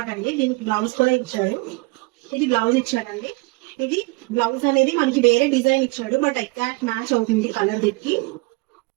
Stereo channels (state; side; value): quieter; left; 25.1 dB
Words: అండి. దీనికి బ్లౌజ్ కూడా ఇచ్చాడు. ఇది బ్లౌజ్ ఇచ్చాడండి. ఇది బ్లౌజ్ అనేది మనకి వేరే డిజైన్ ఇచ్చాడు, బట్ ఎగ్జాక్ట్ మ్యాచ్ అవుతుంది కలర్ దీనికి.